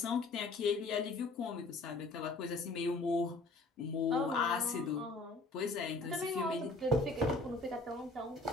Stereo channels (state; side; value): quieter; right; 3.2 dB